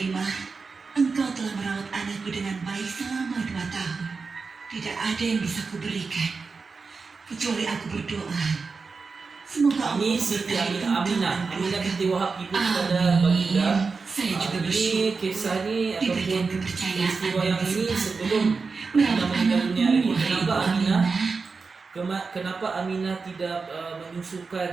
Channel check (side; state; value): left; quieter; 4.6 dB